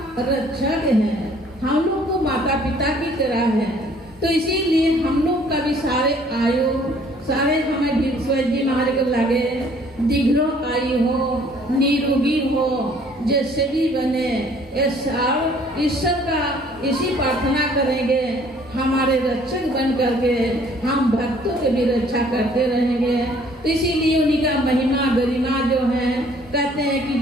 रक्षक है, हम लोग को माता पिता की तरह है, तो इसीलिए हम लोग का भी सारे आयु सारे हमें विश्वनाथ जी महाराज को लगे दीर्घ आयु हो, निरोगी हो, जैसे भी बने। ईश्वर का इसी प्रार्थना करेंगे, हमारे रक्षक बन करके हम भक्तों की भी रक्षा करते रहेंगे। तो इसीलिए उन्हीं का महिमा गरिमा जो है कहते हैं कि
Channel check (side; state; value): both; normal; correlation 0.58